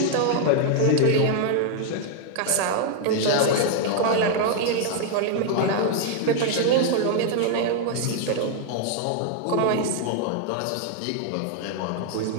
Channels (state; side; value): different; both; correlation 0.00